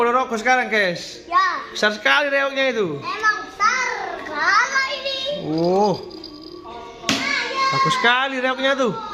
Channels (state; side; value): identical; both; correlation 1.00